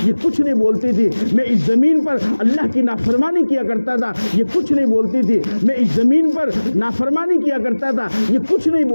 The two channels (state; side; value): inverted; both; correlation -1.00